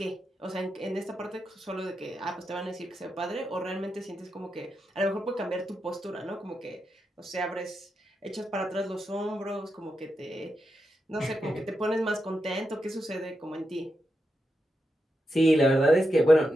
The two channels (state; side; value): normal; both; correlation 0.87